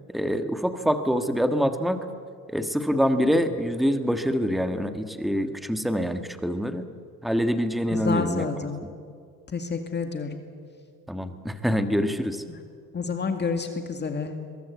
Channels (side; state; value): both; normal; correlation 0.80